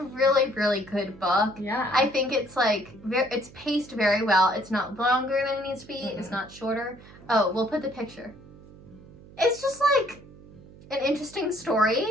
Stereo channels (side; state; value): right; noise; hum, 21 dB below the sound